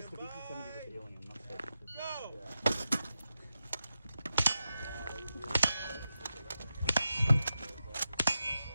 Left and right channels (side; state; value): both; inverted; correlation -0.89